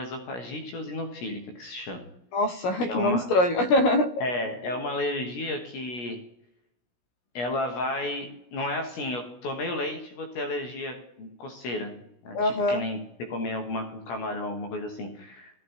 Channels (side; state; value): right; late; 16 ms